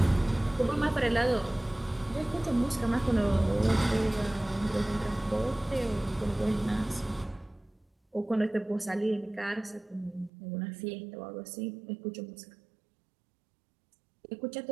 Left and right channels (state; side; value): drops out; left; at 10.3 s